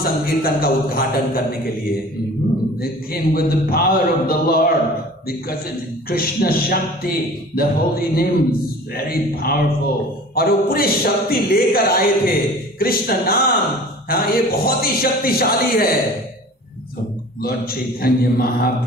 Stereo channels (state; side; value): normal; both; correlation 0.43